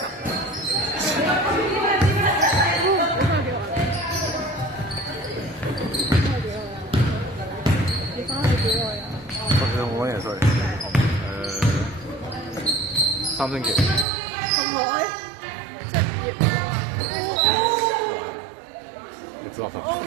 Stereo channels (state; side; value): drops out; left; at 14.1 s